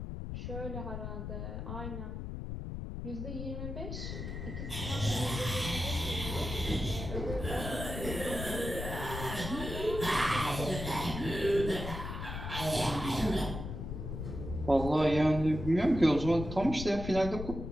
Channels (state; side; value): noise; left; rumble, 6 dB below the sound